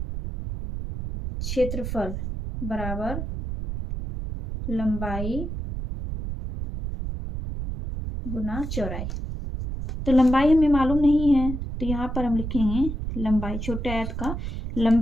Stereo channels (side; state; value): right; noise; rumble, 5 dB below the sound